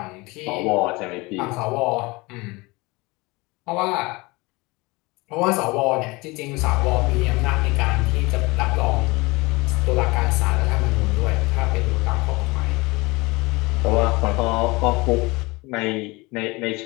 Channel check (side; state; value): right; quieter; 24.0 dB